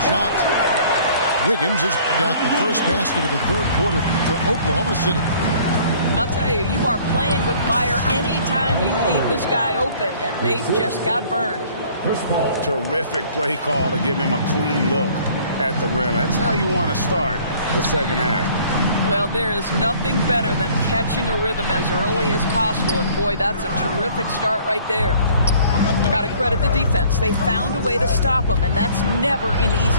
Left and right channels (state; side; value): inverted; both; correlation -0.54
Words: shot. Wiggins has got the first basket of the third quarter for Oklahoma City. I'll tell you, you are playing with fire anytime you leave this guy open, and they just got burned. Terrific play call to give him a clean look at the rim. That's how you want to start the second half. Well, there is nothing better than catching a rhythm as early as possible, and boy, that's a terrific start right there. Got to credit the defense. They found a way to stop him, and that's never an